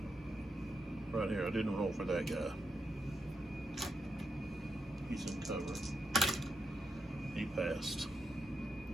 Right here, I didn't roll for that guy. He's in cover. He passed.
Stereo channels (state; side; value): normal; both; correlation 0.83